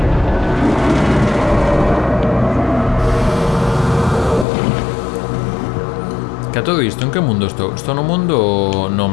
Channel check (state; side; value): drops out; right; at 4.5 s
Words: Que a todo isto, en que mundo estou? Estou no mundo... No